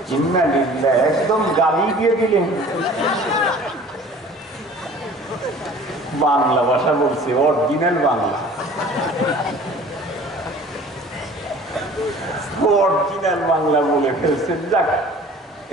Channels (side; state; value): both; normal; correlation 0.47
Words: ইন্নালিল্লাহ, একদম গালি দিয়ে দিলেন। বাংলা ভাষা বলছে, অরিজিনাল বাংলা, অরিজিনাল বাংলা বলে ফেলছেন। যাক,